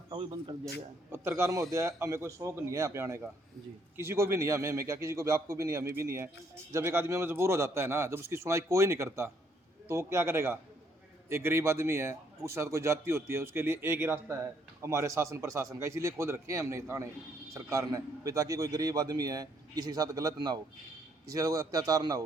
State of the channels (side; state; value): both; normal; correlation 0.69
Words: वही बंद कर दिया गया है। पत्रकार महोदय, हमें कोई शौक नहीं है यहाँ पे आने का जी, किसी को भी नहीं है, हमें क्या किसी को भी, आपको भी नहीं, हमें भी नहीं है। जब एक आदमी मजबूर हो जाता है ना, जब उसकी सुनाई कोई नहीं करता तो वो क्या करेगा। एक गरीब आदमी है, उसके साथ कोई जाति होती है, उसके लिए एक ही रास्ता है हमारे शासन प्रशासन का, इसीलिए खोल रखे हैं हमने थाने सरकार ने भी, ताकि कोई गरीब आदमी है किसी के साथ गलत ना हो, किसी के साथ अत्याचार ना